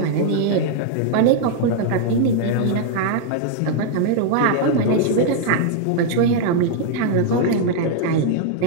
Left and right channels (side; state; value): both; different; correlation -0.01